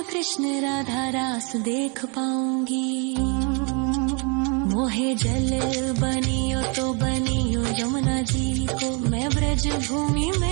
कृष्ण राधा रास देख पाऊंगी। मोहे जल बनियो तो बनियो यमुना जी को, मैं ब्रज भूमि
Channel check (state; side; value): quieter; left; 33.9 dB